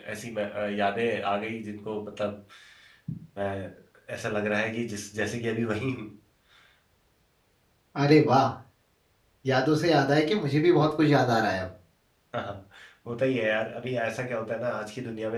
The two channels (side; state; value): both; identical; correlation 1.00